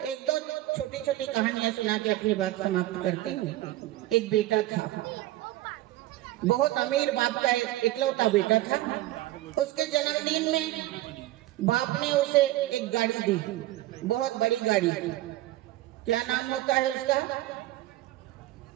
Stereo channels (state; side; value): quieter; left; 16.2 dB